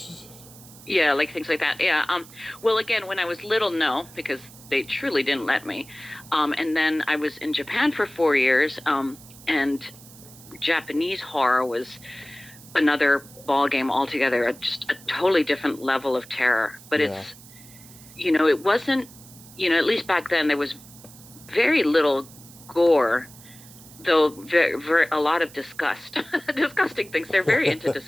Yeah, like things like that. Yeah. Well, again, when I was little, no, because they truly didn't let me. And then I was in Japan for 4 years. And Japanese horror was another ball game altogether, just a totally different level of terror. But it's, it wasn't, at least back then there was very little gore, though a lot of disgusting things. They're very into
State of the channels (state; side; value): noise; right; hiss, 20 dB below the sound